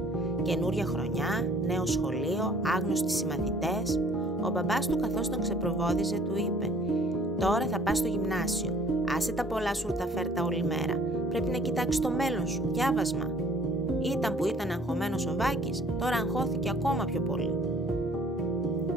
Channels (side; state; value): both; normal; correlation 0.56